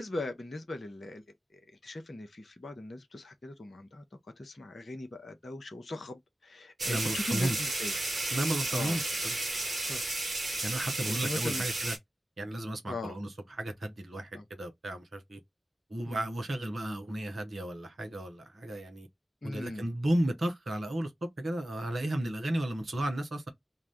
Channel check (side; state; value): both; normal; correlation 0.93